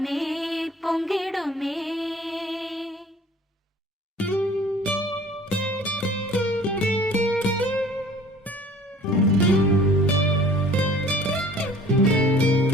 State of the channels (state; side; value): normal; both; correlation 0.49